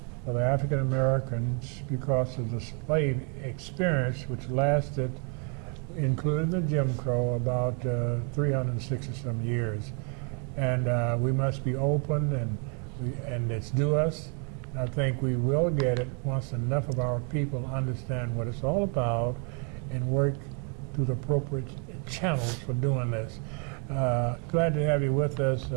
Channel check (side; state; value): left; quieter; 38.7 dB